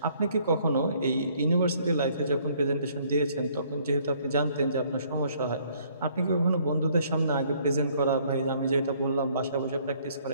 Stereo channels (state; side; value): inverted; both; correlation -0.63